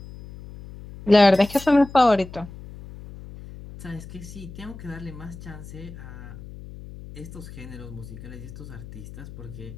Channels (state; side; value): noise; left; hum, 14 dB below the sound